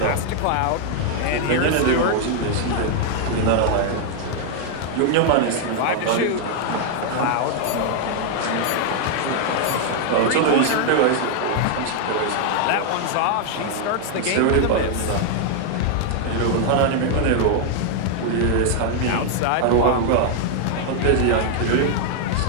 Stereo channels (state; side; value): different; both; correlation 0.00